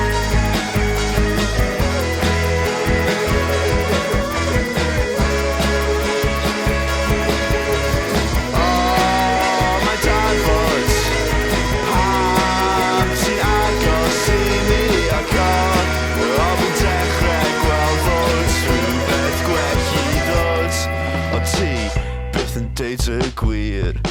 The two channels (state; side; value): identical; both; correlation 1.00